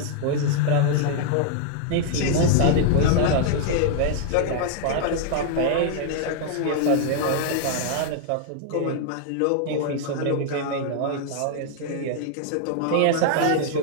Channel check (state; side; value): different; both; correlation 0.00